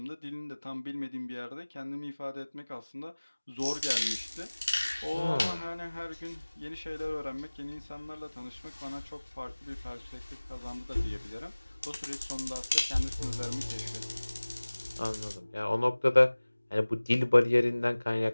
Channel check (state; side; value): inverted; both; correlation -1.00